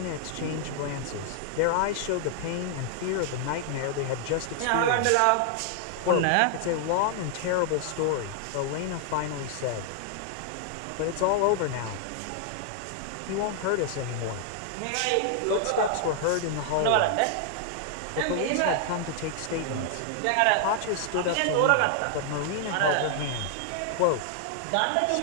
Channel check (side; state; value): both; different; correlation -0.01